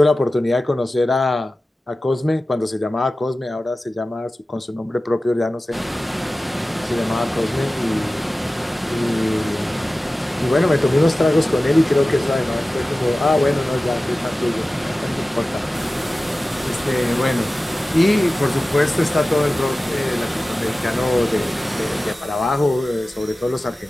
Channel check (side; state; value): both; normal; correlation 0.96